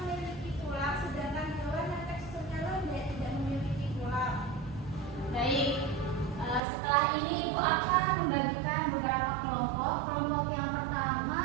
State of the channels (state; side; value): drops out; left; at 6.6 s